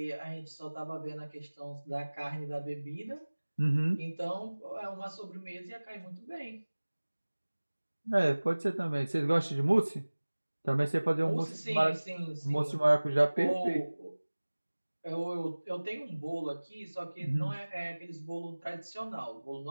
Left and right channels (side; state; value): both; inverted; correlation -1.00